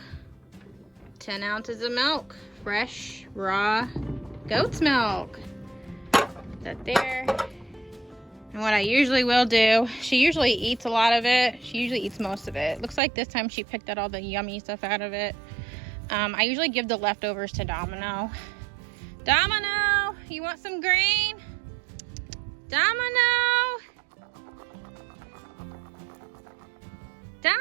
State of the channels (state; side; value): drops out; left; at 13.0 s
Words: 10 ounces of milk. Fresh, raw goat's milk. Put that there. And what I usually will do, she usually eats a lot of it. She usually eats most of it. Looks like this time she picked out all the yummy stuff out of it. I usually give the leftovers to Domino. Domino, you want some grain? Domino!